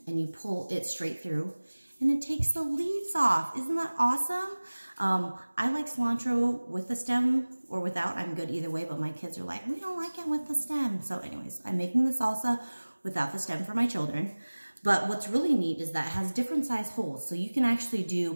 and you pull it straight through, and it takes the leaves off. Isn't that awesome? I like cilantro with the stem or without. I'm good either way, but my kids are like, we don't like it with the stem. So anyways, I'm making the salsa without the stem for my children. But what's really neat is that it has different size holes. So you can actually do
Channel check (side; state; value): both; inverted; correlation -1.00